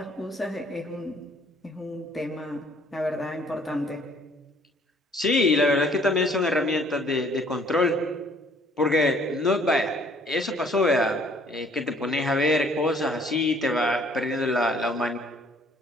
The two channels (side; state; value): both; normal; correlation 0.59